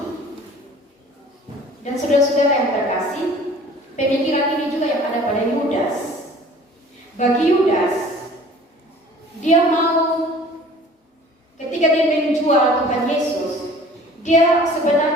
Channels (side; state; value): both; normal; correlation 0.48